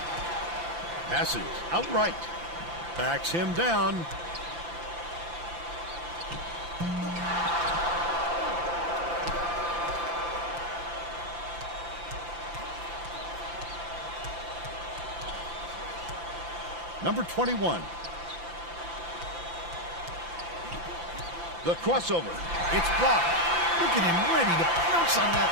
Passes outright. Backs him down. Number 21. The crossover. It's blocked. Look at him ready to pounce on that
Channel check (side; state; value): left; late; 5.9 ms